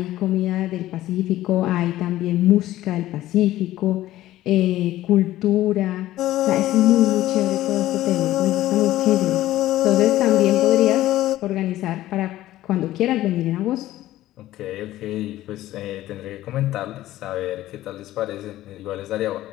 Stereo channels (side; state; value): right; quieter; 14.9 dB